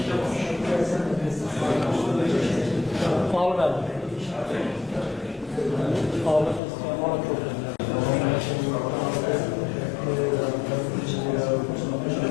Pahalı verdim. Pahalı. Bana çok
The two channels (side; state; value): right; drops out; at 6.6 s